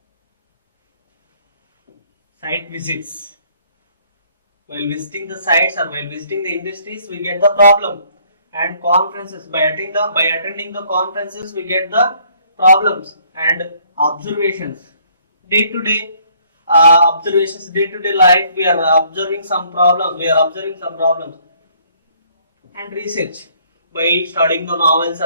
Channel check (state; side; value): inverted; both; correlation -0.63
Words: site visits. While visiting the sites or while visiting the industries, we get the problem. And conferences, by attending the conferences, we get the problems. And observations, day to day observations, day to day life, we are observing some problems. And research, by studying the novels